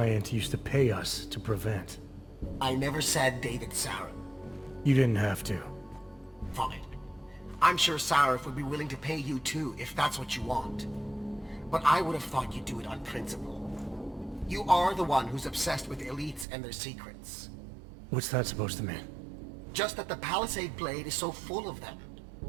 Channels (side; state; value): left; drops out; at 16.4 s